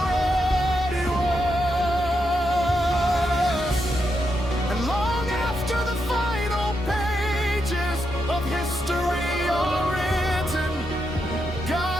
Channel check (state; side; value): normal; both; correlation 0.83